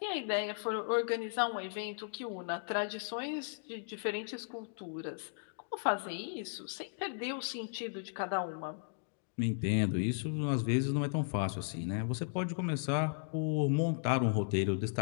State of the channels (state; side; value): silent; right; digital silence